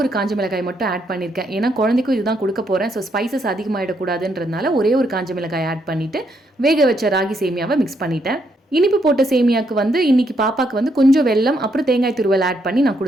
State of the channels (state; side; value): normal; both; correlation 0.76